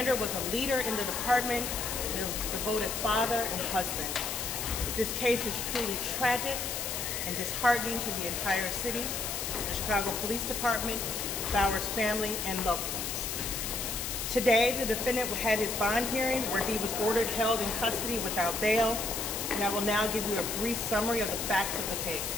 was a leader in the department and a devoted father and husband. This case is truly tragic and disheartening to the entire city, the Chicago Police Department, Bauer's family, and loved ones. Today, the defendant had his bond hearing where he was ordered held in custody without bail, and I will now give you a brief summary of the facts of the case.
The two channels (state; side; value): noise; left; hiss, 3 dB below the sound